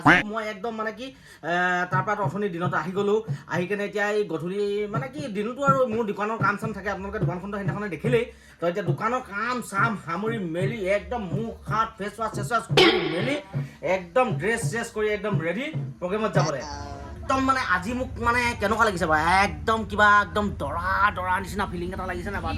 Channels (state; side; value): identical; both; correlation 1.00